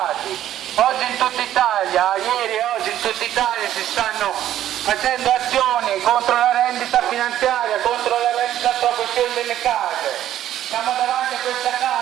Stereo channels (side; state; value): left; quieter; 12.0 dB